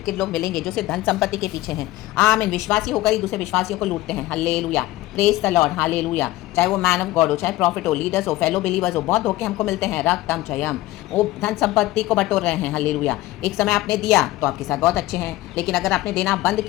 लोग मिलेंगे जो सिर्फ धन संपत्ति के पीछे हैं। आमीन, विश्वासी होकर ही दूसरे विश्वासियों को लूटते हैं, hallelujah, praise the Lord, hallelujah. चाहे वो मैन ऑफ गॉड हो, चाहे प्रॉफिट हो, लीडर्स हो, फेलो बिलीवर्स हो, बहुत धोखे हमको मिलते हैं, रक्तम जयम। वो धन संपत्ति को बटोर रहे हैं, हालेलुया। एक समय आपने दिया तो आपके साथ बहुत अच्छे हैं, लेकिन अगर आपने देना बंद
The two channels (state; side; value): quieter; right; 17.2 dB